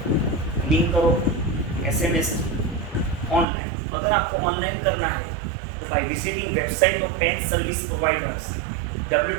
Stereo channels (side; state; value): left; drops out; at 3.5 s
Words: लिंक करो, एसएमएस ऑनलाइन। अगर आपको ऑनलाइन करना है तो by visiting website of PAN service providers